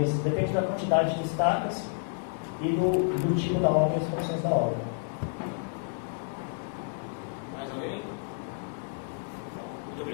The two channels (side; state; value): right; silent; digital silence